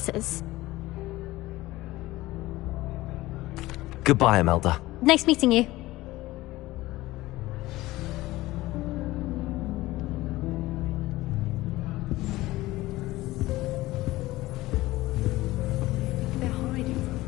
Goodbye, Imelda. Nice meeting you.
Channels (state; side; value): quieter; right; 18.1 dB